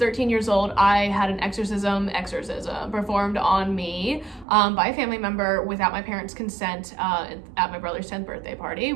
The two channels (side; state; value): left; drops out; at 4.5 s